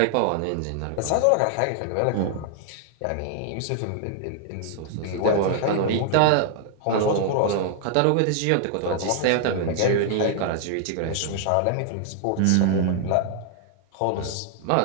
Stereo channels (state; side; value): different; both; correlation 0.00